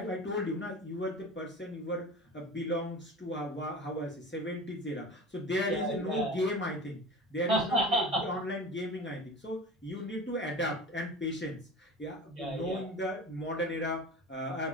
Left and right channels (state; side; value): normal; both; correlation 0.35